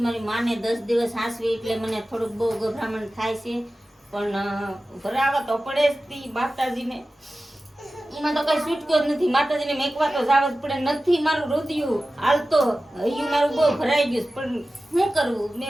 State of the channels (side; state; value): both; normal; correlation 0.95